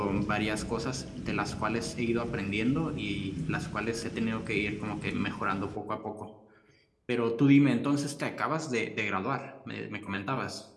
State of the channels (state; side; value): identical; both; correlation 1.00